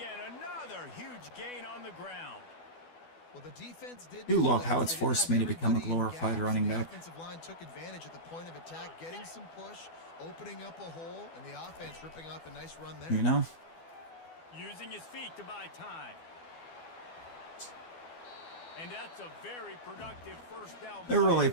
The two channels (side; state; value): right; late; 12 ms